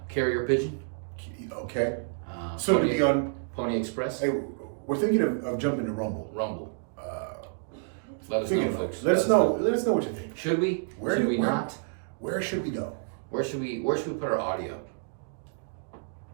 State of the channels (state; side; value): silent; left; digital silence